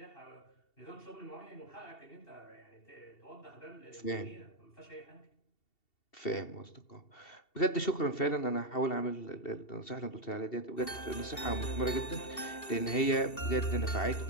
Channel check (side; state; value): right; late; 2.7 ms